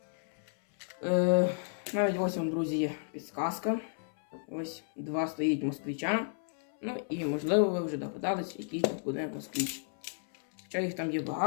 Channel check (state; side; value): silent; right; 56 dB below the other